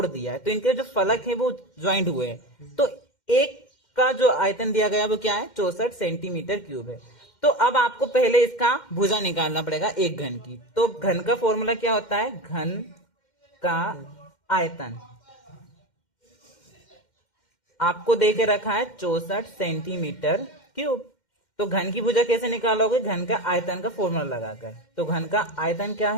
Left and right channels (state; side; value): late; right; 2.1 ms